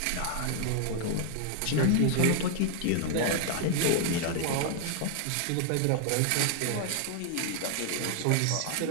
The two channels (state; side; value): different; both; correlation 0.00